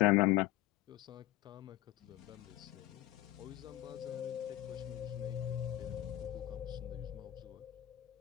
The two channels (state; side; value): quieter; right; 15.2 dB